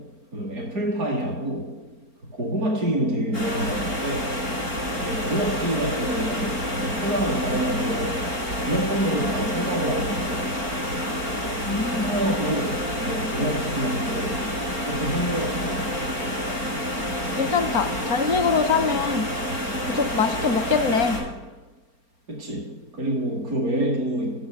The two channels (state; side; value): late; left; 4.4 ms